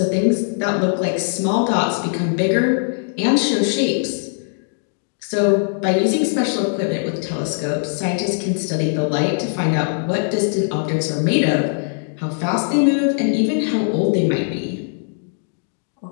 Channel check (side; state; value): right; silent; digital silence